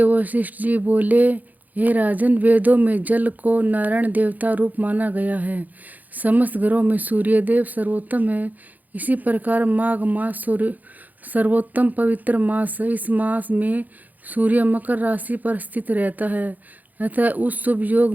वशिष्ठ जी बोले, हे राजन, वेदों में जल को नारायण देवता रूप माना गया है। समस्त ग्रहों में सूर्यदेव सर्वोत्तम है। इसी प्रकार माघ मास सर्वोत्तम पवित्र मास है। इस मास में सूर्य मकर राशि पर स्थित रहता है, अतः उस शुभ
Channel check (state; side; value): late; left; 0.082 ms